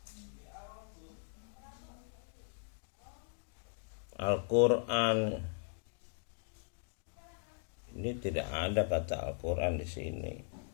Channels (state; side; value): silent; right; digital silence